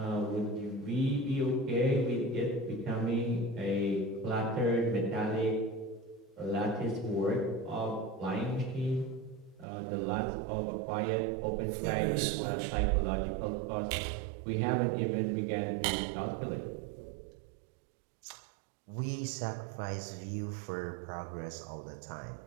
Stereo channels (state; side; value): drops out; left; at 9.7 s